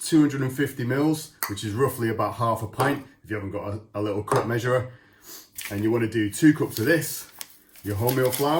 mils, which is roughly about half a pint if you haven't got a little cup measurer. And you want to do 2 cups of this, your wholemeal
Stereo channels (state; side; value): identical; both; correlation 1.00